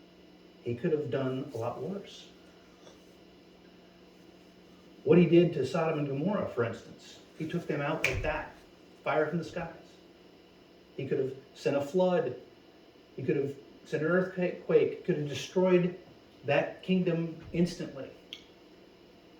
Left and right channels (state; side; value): identical; both; correlation 1.00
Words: he could have done a lot worse. What he did to Sodom and Gomorrah, for instance, he took them out like that, fire from the skies. He could have sent a flood. He could have sent an earthquake. He could have destroyed that kingdom instantly.